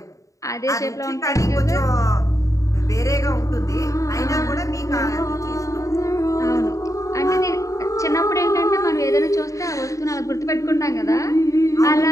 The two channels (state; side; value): late; right; 0.16 ms